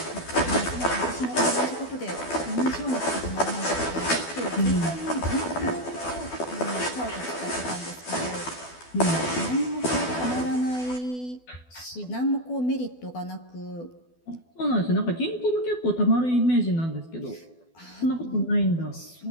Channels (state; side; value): late; right; 12 ms